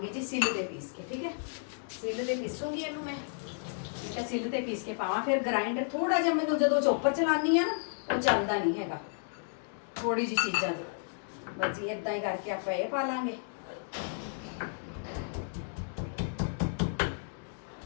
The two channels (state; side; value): silent; right; digital silence